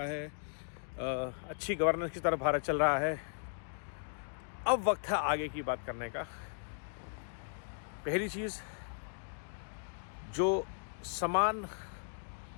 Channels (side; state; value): right; silent; digital silence